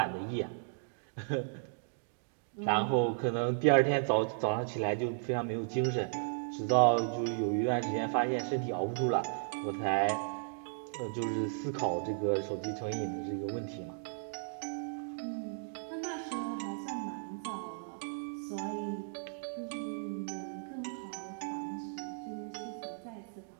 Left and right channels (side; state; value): left; silent; digital silence